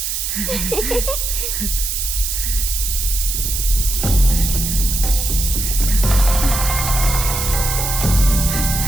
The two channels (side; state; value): right; noise; hiss, 2 dB below the sound